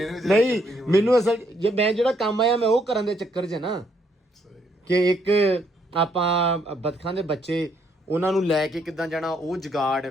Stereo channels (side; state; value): both; normal; correlation 0.72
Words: ਨੇ ਨਹੀਂ ਮੈਨੂੰ ਅਸਲ ਜੇ ਮੈਂ ਜਿਹੜਾ ਕੰਮ ਆਇਆ ਮੈਂ ਉਹ ਕਰਨ ਦੇ ਚੱਕਰ 'ਚ ਨਾ, ਕਿ ਇੱਕ ਆਪਾਂ ਬਤਖਾਂ ਦੇ ਬੱਚੇ ਉਹਨਾਂ ਨੂੰ ਲੈ ਕੇ ਕਿੱਦਾਂ ਜਾਣਾ, ਉਹ ਜਗਾੜ